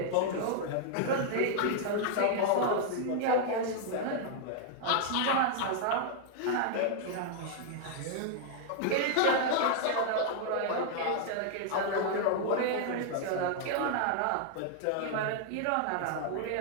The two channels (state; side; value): different; both; correlation 0.00